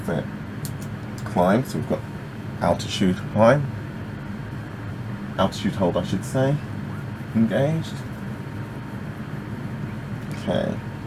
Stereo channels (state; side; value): identical; both; correlation 1.00